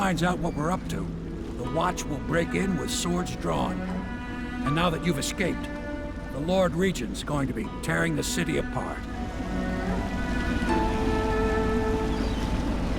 out what we're up to, the Watch will break in with swords drawn. And now that you've escaped, the Lord Regent's going to be tearing the city apart.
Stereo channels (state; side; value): identical; both; correlation 1.00